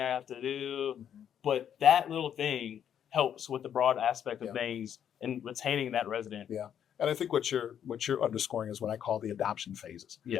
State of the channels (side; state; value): right; quieter; 9.1 dB